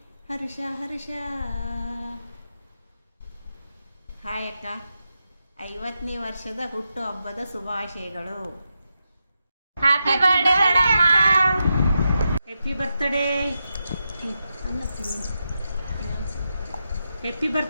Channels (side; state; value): both; inverted; correlation -0.87